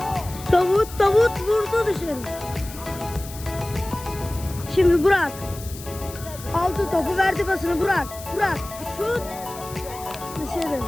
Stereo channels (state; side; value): noise; left; hiss, 15 dB below the sound